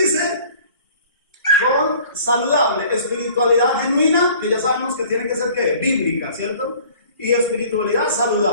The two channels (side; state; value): both; inverted; correlation -0.50